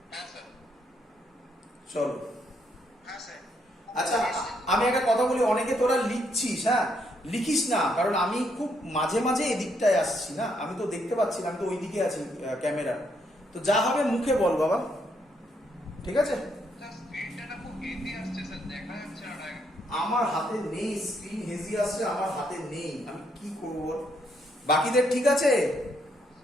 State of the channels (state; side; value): normal; both; correlation 0.74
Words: চলো আচ্ছা, আমি একটা কথা বলি, অনেকে তোরা লিখছিস, হ্যাঁ লিখিস না, কারণ আমি খুব মাঝে মাঝে এদিকটায় আসছি না, আমি তো দেখতে পাচ্ছি না, আমি তো ওই দিকে আছি ক্যামেরা, তো যা হবে মুখে বল বাবা, ঠিক আছে? আমার হাতে নেই স্ক্রিন, হেজি আসছে, আমার হাতে নেই, আমি কি করব? বাকিদের ঠিক আছে?